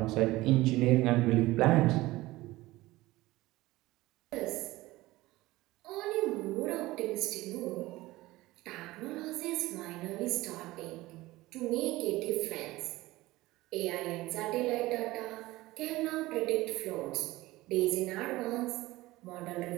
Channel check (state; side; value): quieter; left; 18.6 dB